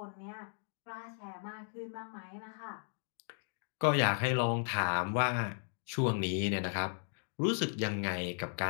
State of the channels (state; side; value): silent; right; 54 dB below the other